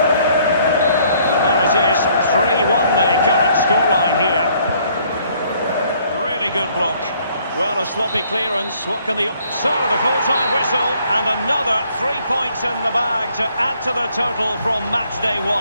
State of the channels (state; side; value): inverted; both; correlation -0.63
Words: So there it is, 3-1 the current scoreline here. Really good block. Well, a sloppy clearance. What can the... So, the full-time whistle, and another 3 points in the bag to add to the total from match day